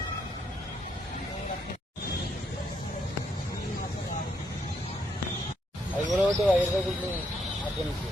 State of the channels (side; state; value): both; normal; correlation 0.75